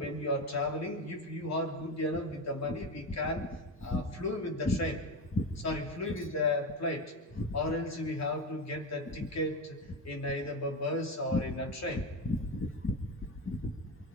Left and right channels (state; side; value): normal; both; correlation 0.18